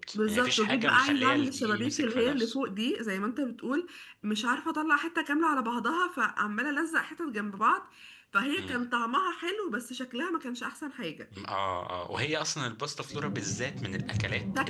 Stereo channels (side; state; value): both; identical; correlation 1.00